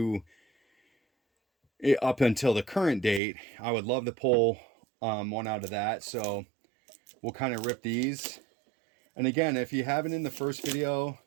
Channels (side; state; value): left; drops out; at 3.2 s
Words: up until the current date. I would love to pull one out of that. So we'll kind of rip these. And again, if you haven't in the first video,